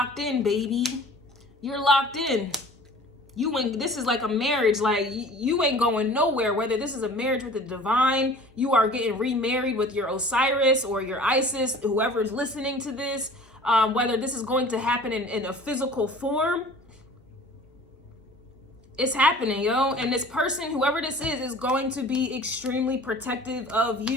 in, baby. You're locked in. This is like a marriage. Like you ain't going nowhere. Whether this is a marriage with the divine, you are getting remarried with your Osiris or your Isis, whoever is listening to this, whether this is going to happen in a physical form. It's happening, yo. And this person, whoever this is going to be extremely protective of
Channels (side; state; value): both; normal; correlation 0.46